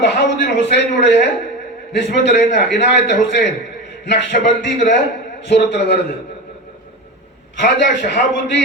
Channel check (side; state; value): both; normal; correlation 0.24